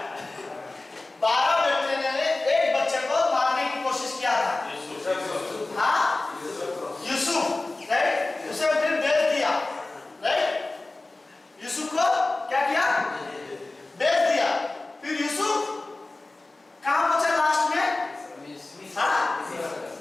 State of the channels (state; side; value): quieter; right; 3.1 dB